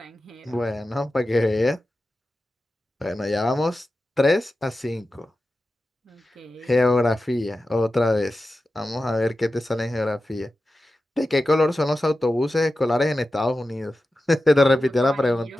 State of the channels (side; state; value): both; normal; correlation 0.93